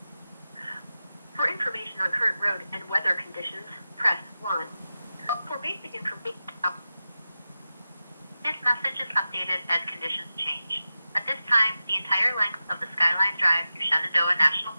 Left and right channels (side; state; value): both; inverted; correlation -0.93